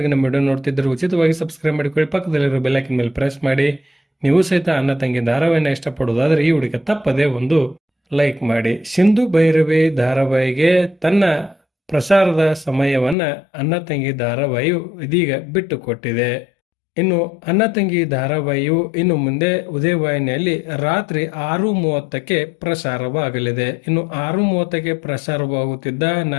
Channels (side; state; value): right; drops out; at 13.2 s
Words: ನಮ್ಮ ವಿಡಿಯೋ ನೋಡ್ತಿದ್ದರೆ ಉಚಿತವಾಗಿ ಸಬ್ಸ್ಕ್ರೈಬ್ ಮಾಡಿಕೊಳ್ಳಿ, ಪಕ್ಕದಲ್ಲಿರೋ ಬೆಲ್ ಐಕಾನ್ ಮೇಲೆ ಪ್ರೆಸ್ ಮಾಡಿ. ನೀವು ಸಹಿತ ಅಣ್ಣ ತಂಗಿ ಧಾರಾವಾಹಿನ ಇಷ್ಟಪಡುವುದಾದರೆ ಈ ವಿಡಿಯೋಕ್ಕೆ ತಪ್ಪದೇ ಒಂದು ಲೈಕ್ ಮಾಡಿ. ಸಿಂಧು ಭೈರವಿ ಧಾರಾವಾಹಿಗೆ ತನ್ನ ಪ್ರಸಾರದ ಸಮಯವನ್ನು ಅಣ್ಣ ತಂಗಿ ಧಾರಾವಾಹಿಯು ಇದೀಗ ಬಿಟ್ಟುಕೊಟ್ಟಿದೆ. ಇನ್ನು ಅಣ್ಣ ತಂಗಿ ಧಾರಾವಾಹಿಯು ಇನ್ನು ಮುಂದೆ ಉದಯ ವಾಹಿನಿಯಲ್ಲಿ ರಾತ್ರಿ 6:30ಕ್ಕೆ ಪ್ರಸಾರವಾಗಲಿದೆ. ಇನ್ನು 6:30ಕ್ಕೆ ಪ್ರಸಾರವಾಗುತ್ತಿದ್ದ